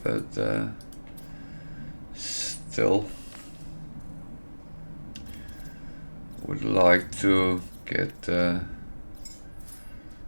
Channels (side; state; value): both; inverted; correlation -1.00